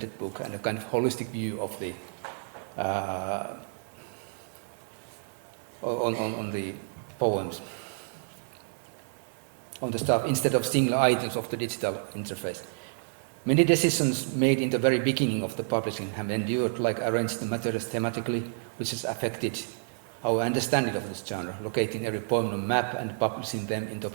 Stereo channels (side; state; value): left; silent; digital silence